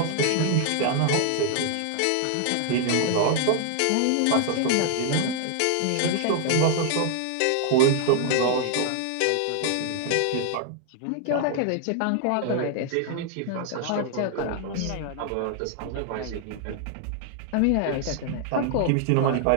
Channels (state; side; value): different; both; correlation 0.00